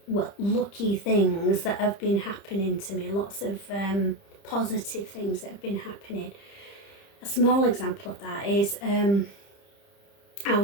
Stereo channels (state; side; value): late; right; 30 ms